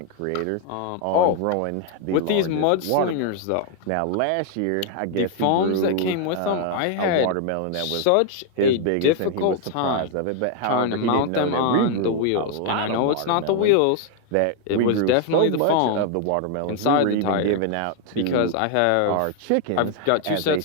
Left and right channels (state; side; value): different; both; correlation 0.00